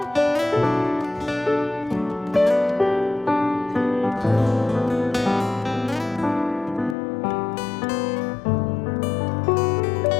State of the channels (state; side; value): drops out; right; at 7.0 s